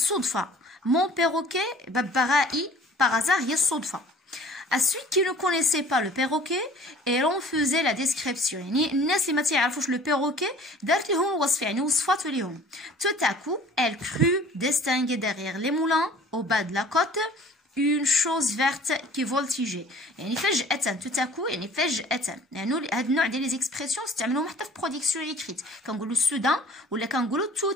mon perroquet ببغائي par hasard هي الصدفة. À celui qui ne connaissait pas le perroquet et l'on faisait la description يعني الناس اللي ما تعرفوش le perroquet دارت لهم الوصف يعني وصفات لهم. Tout à coup elle crut distinguer derrière les moulins au bas de la côte une chose verte qui voltigeait يعني فجأة tout à coup يعني فجأة يعني هذا النوع ديال لي زيكسبرسيون استعملوهم حتى في برودكسيون ايكريت كنقولوا سودان ولا كنقولوا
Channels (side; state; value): both; normal; correlation 0.49